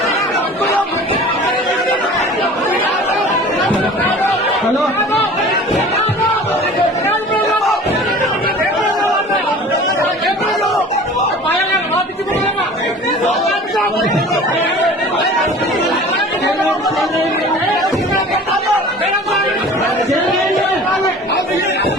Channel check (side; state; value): both; normal; correlation 0.42